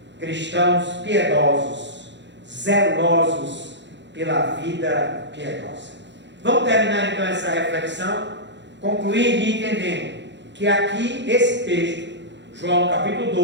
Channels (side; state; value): left; late; 0.52 ms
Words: cristãos piedosos, zelosos pela vida piedosa. Vamos terminar então essa reflexão, concluindo e entendendo que aqui esse texto, João capítulo